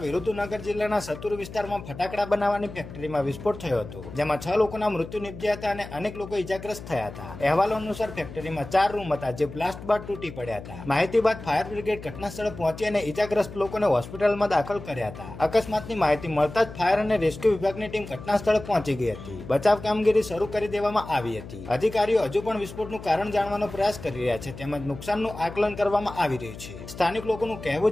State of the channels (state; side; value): noise; left; hum, 13 dB below the sound